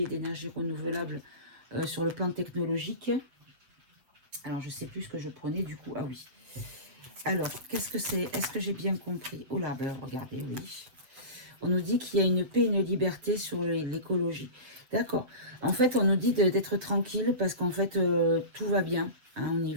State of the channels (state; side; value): late; left; 7.7 ms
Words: et d'énergie renouvelable sur le plan technologique, alors je ne sais plus ce que je prenais du coup. Ah oui. Alors, qu'est-ce que c'est? Est-ce que j'ai bien compris? Oh là, ben regardez, oui. On nous dit qu'il y a une paix et une liberté sur l'écologie. D'accord. En fait, on nous dit d'être tranquille parce qu'en fait, tout va bien hein, au